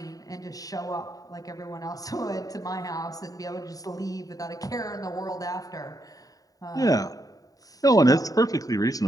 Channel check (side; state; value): right; late; 0.18 ms